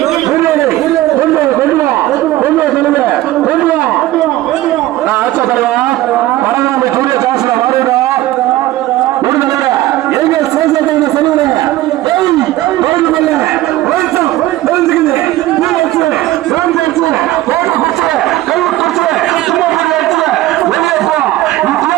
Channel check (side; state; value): left; quieter; 15.9 dB